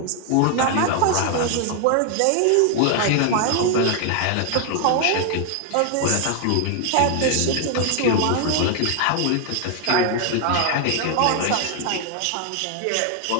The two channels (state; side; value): different; both; correlation 0.00